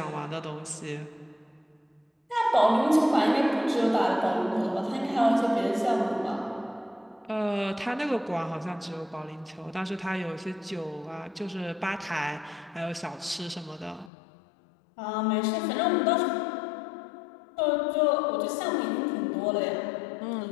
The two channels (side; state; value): right; drops out; at 14.1 s